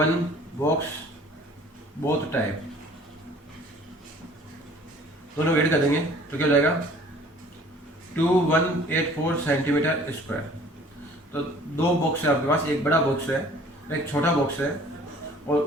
box both type, दोनों ऐड कर देंगे तो क्या हो जाएगा 2184 सेंटीमीटर स्क्वायर। तो दो बॉक्स है आपके पास, एक बड़ा बॉक्स है एक छोटा बॉक्स है, और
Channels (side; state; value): both; normal; correlation 0.52